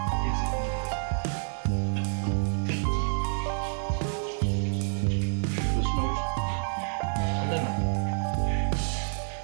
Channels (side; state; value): left; silent; digital silence